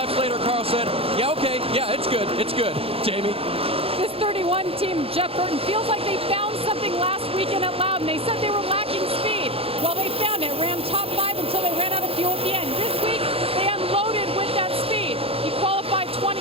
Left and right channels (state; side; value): late; left; 0.28 ms